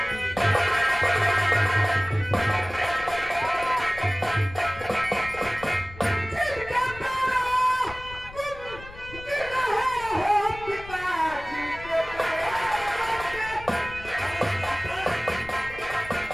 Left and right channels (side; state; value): left; noise; rumble, 16 dB below the sound